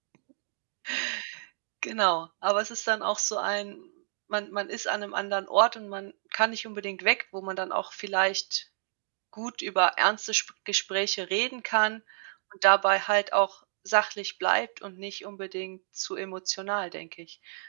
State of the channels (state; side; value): silent; left; digital silence